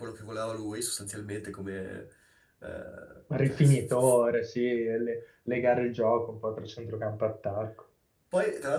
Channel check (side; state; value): both; identical; correlation 1.00